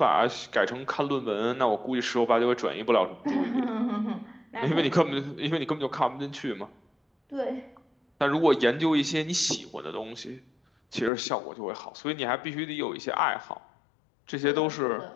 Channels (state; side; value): drops out; right; at 11.1 s